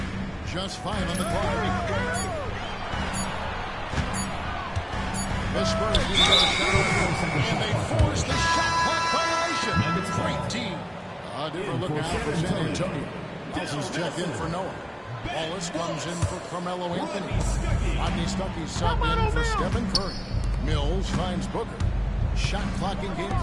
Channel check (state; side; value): identical; both; correlation 1.00